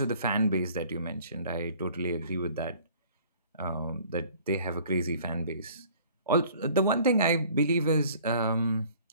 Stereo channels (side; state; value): both; inverted; correlation -0.53